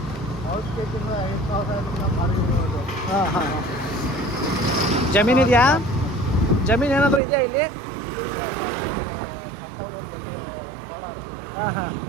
ಹಾಂ ಹಾಂ. ಜಮೀನಿದೆಯಾ? ಜಮೀನು ಏನಾದರೂ ಇದೆಯಾ ಇಲ್ಲಿ? ಹಾಂ ಹಾಂ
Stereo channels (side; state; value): left; drops out; at 7.2 s